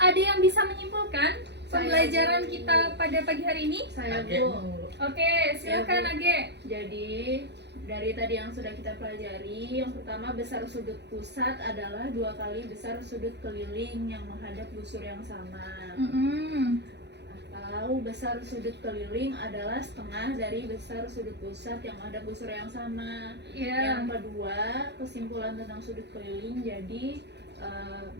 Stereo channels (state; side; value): late; left; 0.50 ms